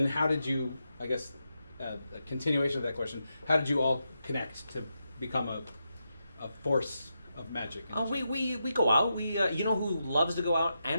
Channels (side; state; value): both; inverted; correlation -0.86